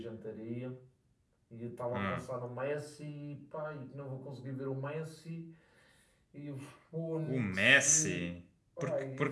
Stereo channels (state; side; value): identical; both; correlation 1.00